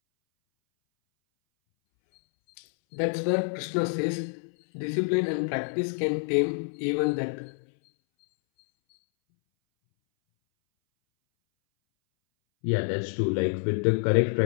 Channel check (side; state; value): right; silent; 60 dB below the other